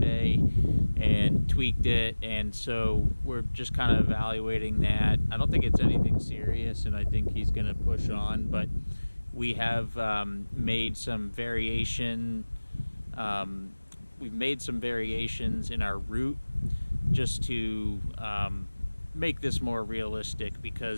and tweaked it, and so we're just kind of evaluating that. I don't think it's anything serious, and I think he's gonna push on, but we have made some variation. We've made some variations in our route just to make this more realistic,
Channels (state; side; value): inverted; both; correlation -1.00